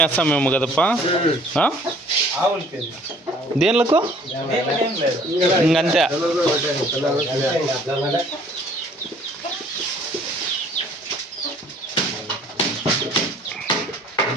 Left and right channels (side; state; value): both; normal; correlation 0.56